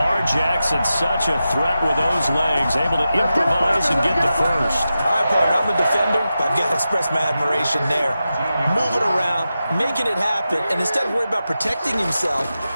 Jackson, such a threat with those legs. Able to improvise and get the 1st. All right, partner, I'm a defender, but I've got to express my admiration there. Moving around, making it happen, and instead of worrying about protecting himself,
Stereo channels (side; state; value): both; inverted; correlation -0.91